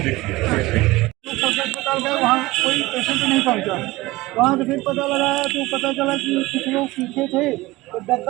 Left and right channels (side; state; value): left; quieter; 19.8 dB